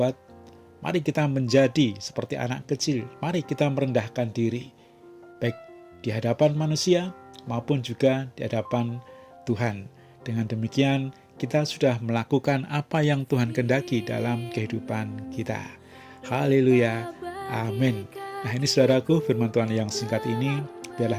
Mari kita menjadi seperti anak kecil. Mari kita merendahkan diri. Baik di hadapan manusia maupun juga di hadapan Tuhan. Dengan demikian kita sudah melakukan apa yang Tuhan kehendaki dalam kehidupan kita. Haleluya. Amin. Nah, ini saudaraku, firman Tuhan yang singkat ini biarlah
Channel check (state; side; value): identical; both; correlation 1.00